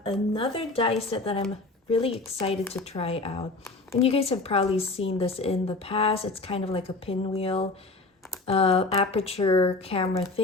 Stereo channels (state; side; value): quieter; right; 3.4 dB